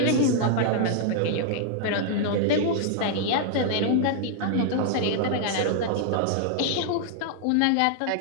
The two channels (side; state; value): both; different; correlation 0.00